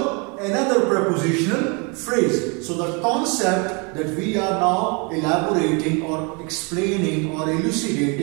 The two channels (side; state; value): left; quieter; 32.4 dB